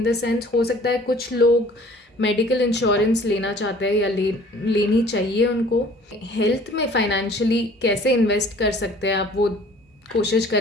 द सेंस हो सकता है कुछ लोग मेडिकल इंश्योरेंस लेना चाहते हैं या लेनी चाहिए उनको। हेल्थ में फाइनेंशियली कैसे इन्वेस्ट कर सकते हैं आप, वो कोशिश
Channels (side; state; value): both; normal; correlation 0.52